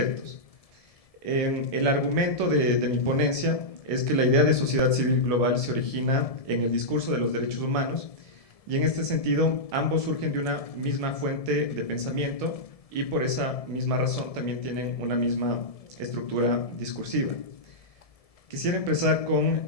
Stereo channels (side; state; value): right; late; 1.7 ms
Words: El argumento de mi ponencia es que la idea de sociedad civil global se origina en el discurso de los derechos humanos y en este sentido ambos surgen de una misma fuente de pensamiento y por esa misma razón también tienen una misma estructura discursiva. Quisiera empezar